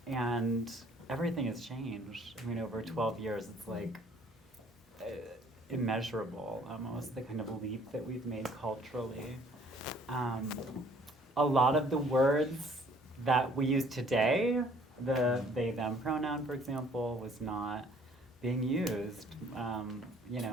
and everything has changed. I mean, over 12 years, it's like immeasurable, almost, the kind of leap that we've made culturally. A lot of the words that we use today, the they, them pronoun, for example, was not being used,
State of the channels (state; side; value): normal; both; correlation 0.59